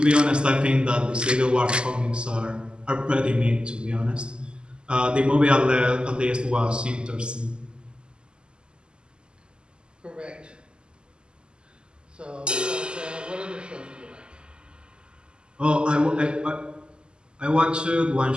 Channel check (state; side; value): late; left; 0.049 ms